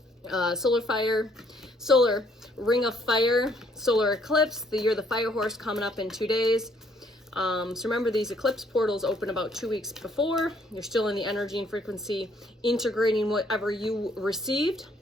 Solar ring of fire, solar eclipse, the year of the fire horse coming up in 2 days. So remember, these eclipse portals open about 2 weeks before. You're still in the energy and frequency, integrating whatever you received.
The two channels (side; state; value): both; normal; correlation 0.66